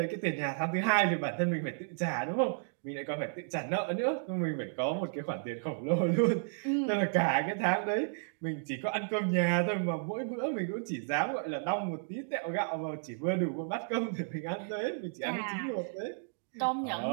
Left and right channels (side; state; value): left; silent; digital silence